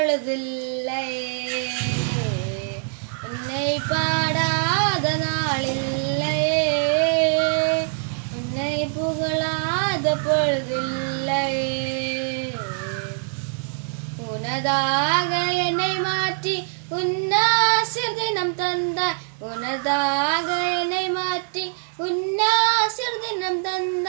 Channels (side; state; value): left; silent; 60 dB below the other